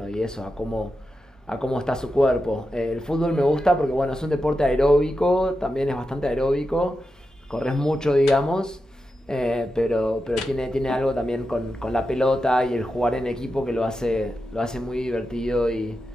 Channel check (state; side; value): normal; both; correlation 0.89